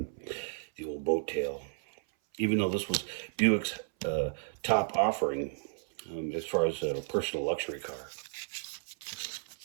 old boat tail. Even though this was Buick's top offering as far as a personal luxury car.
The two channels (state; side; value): silent; left; 56 dB below the other